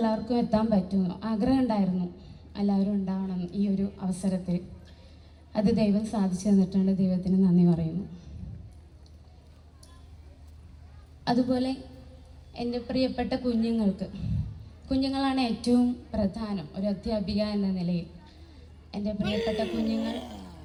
എത്താൻ പറ്റുമെന്ന്, ആഗ്രഹം ഉണ്ടായിരുന്നു എല്ലാവരും ഉണ്ടാവണം ഈ ഒരു അവസരത്തിൽ. അത് ദൈവം സാധിച്ചു തന്നിട്ടുണ്ട്, ദൈവത്തിന് നന്ദി പറയുന്നു. അതുപോലെ എൻ്റെ പ്രിയപ്പെട്ട കുഞ്ഞുങ്ങളാണ് ഏറ്റവും പ്രധാനം ഒരു അധ്യാപിക എന്ന നിലയിൽ. എൻ്റെ പ്രിയപ്പെട്ട കുഞ്ഞുങ്ങൾ,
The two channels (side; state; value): both; identical; correlation 1.00